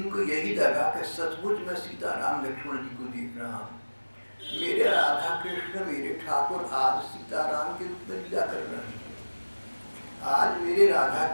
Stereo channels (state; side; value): inverted; both; correlation -1.00